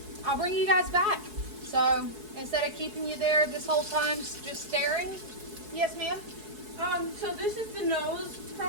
I'll bring you guys back. So instead of keeping you there this whole time just staring. Yes, ma'am? So this is the nose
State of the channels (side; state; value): left; late; 4.7 ms